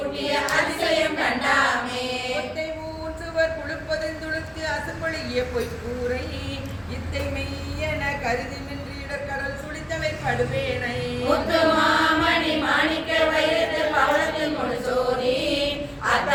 அதிசயம் கண்டாமே ஒத்தை ஊற்றுவர் குழுப்பதன் துளுத்து அசம்பொழிய பொய்க்கூரை இத்தை மெய்யென கருதி நின்று இடர்கடல் சுழித்தவை படுவேனை முத்துமாமணி மாணிக்க வைரத்து பவளத்தில் முழுசோதி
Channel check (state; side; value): identical; both; correlation 1.00